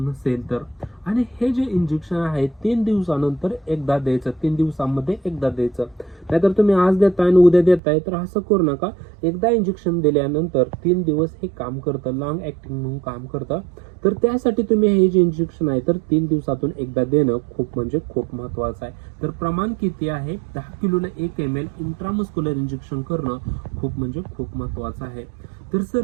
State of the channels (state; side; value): drops out; left; at 7.8 s